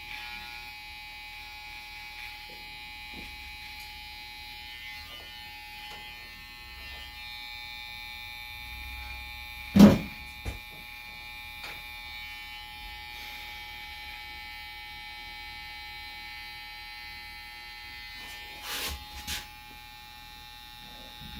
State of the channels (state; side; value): identical; both; correlation 1.00